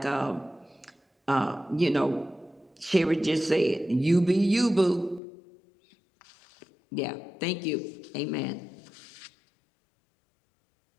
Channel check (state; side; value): drops out; right; at 5.2 s